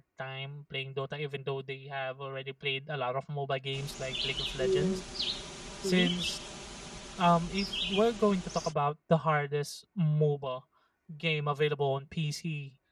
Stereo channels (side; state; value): both; identical; correlation 1.00